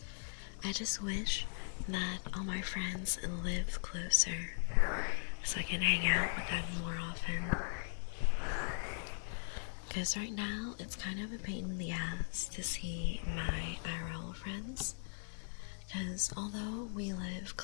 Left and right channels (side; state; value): right; silent; 52 dB below the other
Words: I just wish that all my friends live closer so I can hang out with them more often. Because right now, it's kind of a pain in the ass to see my IRL friends. Because although we live